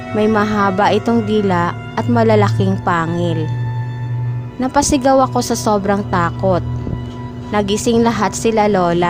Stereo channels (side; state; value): both; identical; correlation 1.00